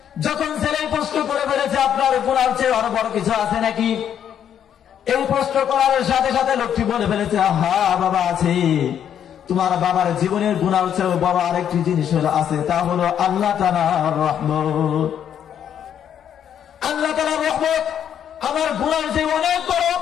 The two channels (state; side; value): quieter; right; 9.3 dB